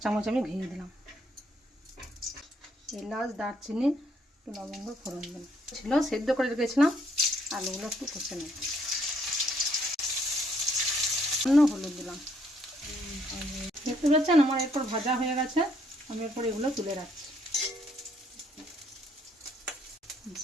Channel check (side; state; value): both; normal; correlation 0.68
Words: চামচ আমি ঘি দিলাম, এলাচ দারচিনি একটু লবঙ্গ ফোড়ন দিলাম। ছিল সেদ্ধ করে রেখেছিলাম, আলুগুলো একটু কষে নেব। হলুদ দিলাম। দেখতে পাচ্ছেন আমার এরপর ভাজা হয়ে গেছে, আমি এরপর এগুলো তুলে রাখছি।